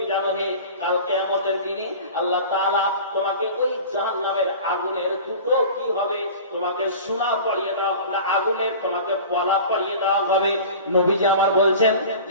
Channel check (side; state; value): both; inverted; correlation -0.38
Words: জানো? হে, কাল কিয়ামতের দিনে আল্লাহ তাআলা তোমাকে ওই জাহান্নামের আগুনের দুটো কি হবে? তোমাকে সোনা পরিয়ে দেওয়া হবে, আগুনের তোমাকে পলা পরিয়ে দেওয়া হবে। নবীজি আমার বলছেন